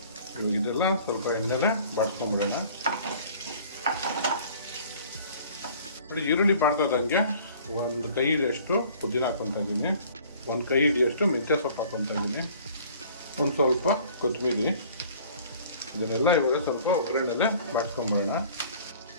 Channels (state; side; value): inverted; both; correlation -0.51